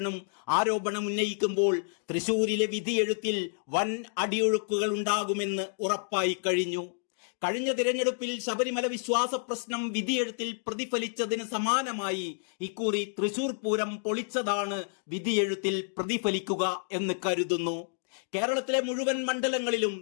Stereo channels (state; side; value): silent; right; digital silence